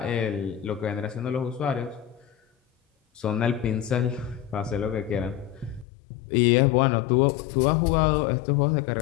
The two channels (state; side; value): drops out; right; at 5.9 s